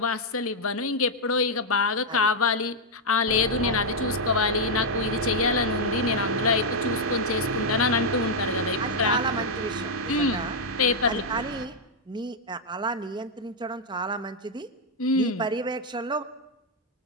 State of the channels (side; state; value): both; normal; correlation -0.03